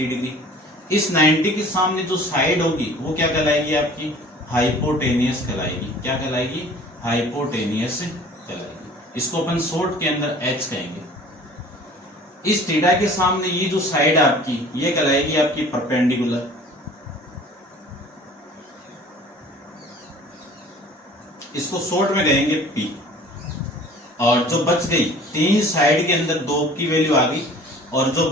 डिग्री। इस 90 के सामने जो साइड होगी वो क्या कहलाएगी? आपकी हाइपोटेनियस कहलाएगी। क्या कहलाएगी? हाइपोटेनियस कहलाएगी। इसको अपन शॉर्ट के अंदर एच कहेंगे। इस थीटा के सामने ये जो साइड आपकी ये कहलाएगी आपकी परपेंडिकुलर। इसको शॉर्ट में कहेंगे पी। और जो बच गई 3 साइड के अंदर 2 की वैल्यू आ गई, और जो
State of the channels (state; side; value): normal; both; correlation 0.48